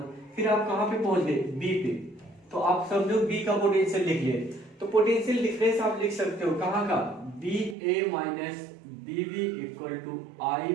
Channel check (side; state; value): left; drops out; at 7.8 s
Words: फिर आप कहां पे पहुंच गए, B पे, तो आप समझो B का पोटेंशियल लिख लिए। तो पोटेंशियल डिफरेंस आप लिख सकते हो कहां का, BA minus BB equal to